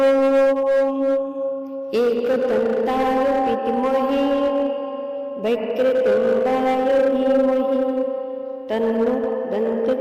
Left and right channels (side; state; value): both; identical; correlation 1.00